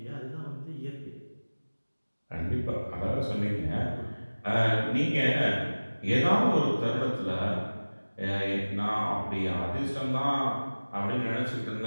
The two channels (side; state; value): both; inverted; correlation -1.00